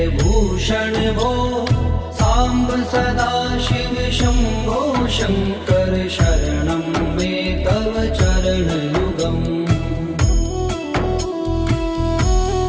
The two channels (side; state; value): both; identical; correlation 1.00